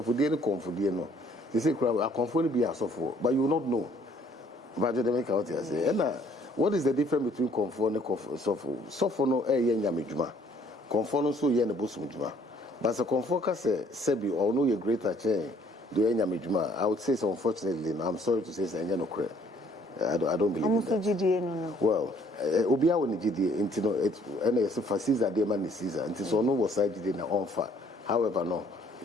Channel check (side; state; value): both; normal; correlation 0.62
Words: for dinner, confordiano. They say, I conform be a software, but you will not know. But they make out here say, what is the difference between conform and software? Software no a yen yamijuma. Conform so yen a busmujuma. But a conform say, Sebi, or no, your greater chain, do yen yamijuma. I would say so, unfortunately, I'm sorry to say, say, no, I don't believe in that. Well, Obia when GDA, into it, and it's for Caesar, dear man is Caesar, and it's no was side in the on fire. However, no,